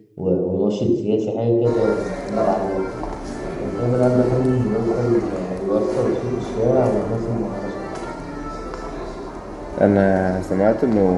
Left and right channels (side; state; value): both; identical; correlation 1.00